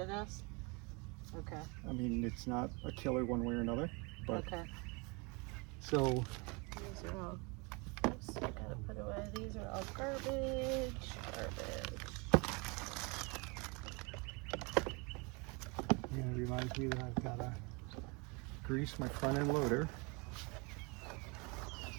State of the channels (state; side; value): quieter; left; 29.6 dB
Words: this? Okay. I mean, it's not a killer one way or another. But Okay. so These are all, oops, gotta put away. These are all garbage. and it reminds me that I've got to grease my front end loader.